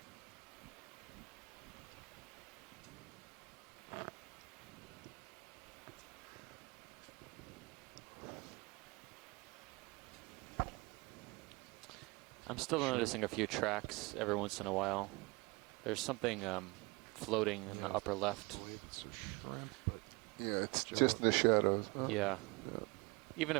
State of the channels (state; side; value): quieter; left; 26.1 dB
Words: I'm still noticing a few tracks every once in a while. There's something floating in the upper left. I believe it's a shrimp, but Yeah, it's just in the shadows. Huh? Yeah. Even